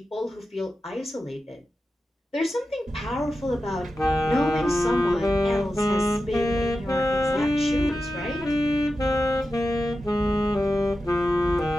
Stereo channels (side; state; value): both; normal; correlation 0.91